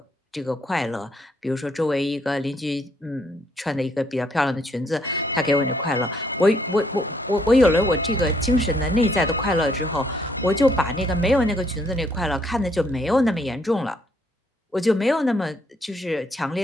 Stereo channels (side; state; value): both; normal; correlation 0.69